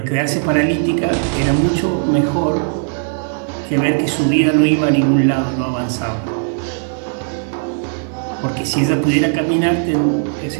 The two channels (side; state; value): left; silent; 58 dB below the other